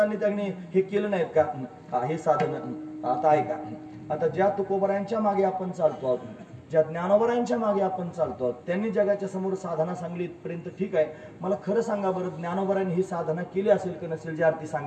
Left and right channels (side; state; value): both; identical; correlation 1.00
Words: त्यांनी हे केलं नाहीत का हे साधन. आता ऐका आता ज्या तुकोबरायांच्या मागे आपण चालतो आहोत ज्या ज्ञानोबरायांच्या मागे आपण चालतो त्यांनी जगाच्या समोर साधना सांगली इथपर्यंत ठीक आहे. मला खरं सांगा बरं ज्ञानोबरायांनी ही साधना केली असेल की नसेल जी आरती